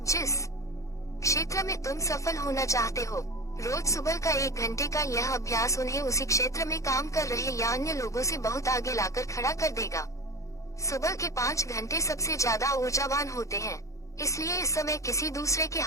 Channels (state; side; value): late; right; 0.15 ms